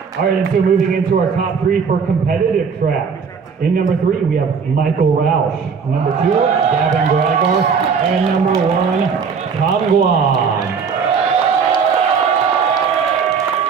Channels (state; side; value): quieter; left; 6.0 dB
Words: All right, and so moving into our top 3 for competitive track. In number 3, we have Michael Roush. Number 2, Gavin Gregor. And number 1, Tom Guan.